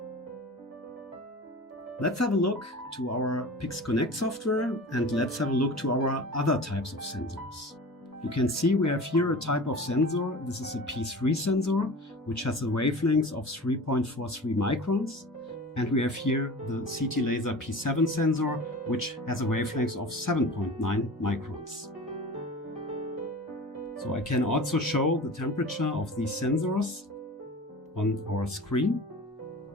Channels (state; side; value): normal; both; correlation 0.37